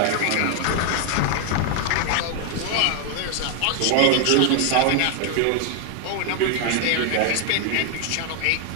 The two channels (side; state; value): both; different; correlation 0.00